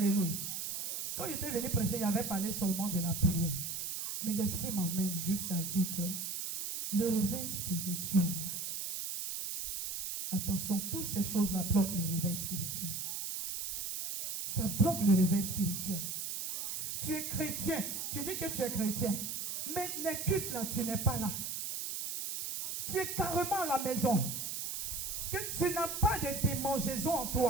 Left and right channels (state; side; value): noise; right; hiss, 4 dB below the sound